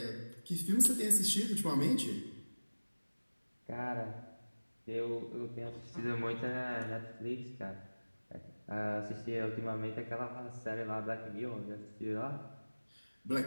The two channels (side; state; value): both; inverted; correlation -1.00